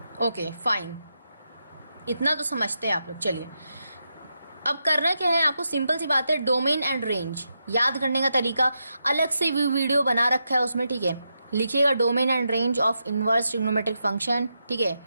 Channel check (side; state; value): both; inverted; correlation -0.85